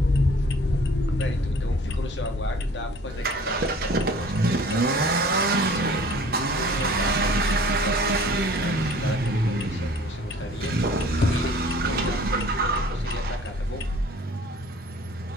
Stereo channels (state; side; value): normal; both; correlation 0.50